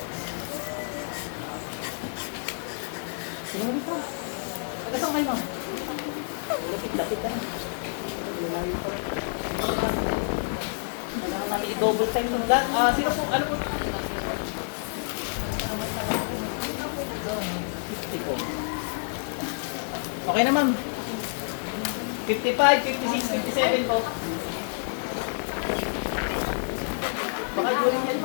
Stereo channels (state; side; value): silent; right; digital silence